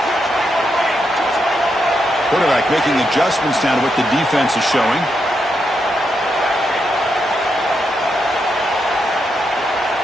Quarterback making adjustments now to what the defense is showing.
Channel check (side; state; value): both; normal; correlation 0.82